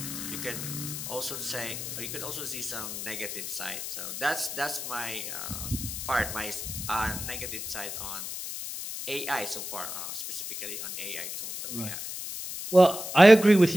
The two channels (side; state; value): left; noise; hiss, 6 dB below the sound